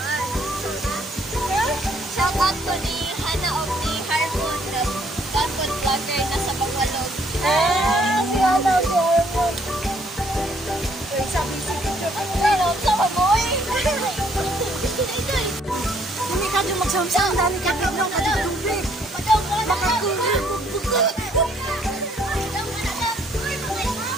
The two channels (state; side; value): normal; both; correlation 0.66